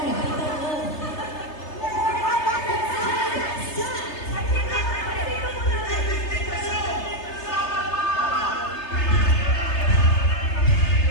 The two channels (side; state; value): right; late; 3.3 ms